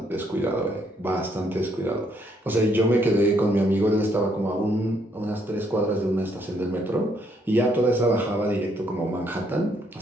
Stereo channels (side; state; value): both; normal; correlation 0.71